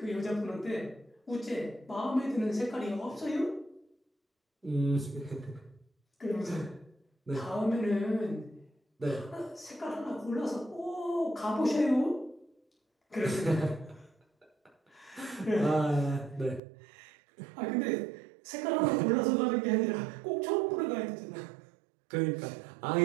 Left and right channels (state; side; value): drops out; left; at 16.6 s